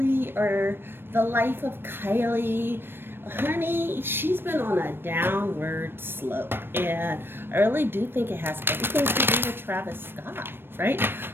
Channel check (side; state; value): left; late; 0.10 ms